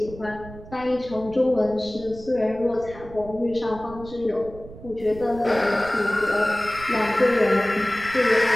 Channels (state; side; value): noise; right; rumble, 16 dB below the sound